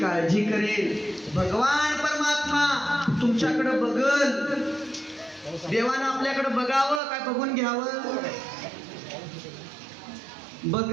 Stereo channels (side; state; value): left; drops out; at 7.0 s